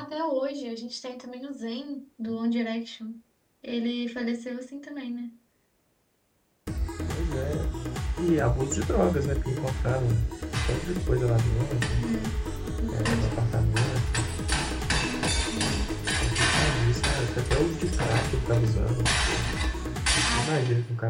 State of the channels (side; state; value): both; identical; correlation 1.00